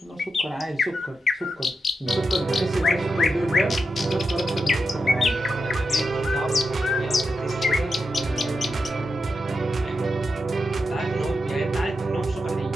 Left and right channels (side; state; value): both; normal; correlation 0.87